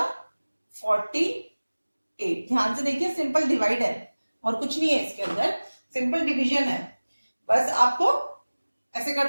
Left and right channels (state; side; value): inverted; both; correlation -1.00